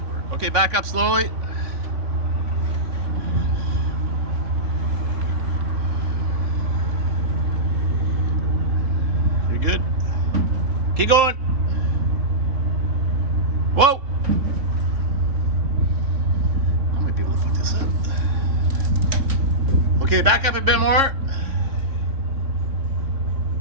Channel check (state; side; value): late; left; 3.6 ms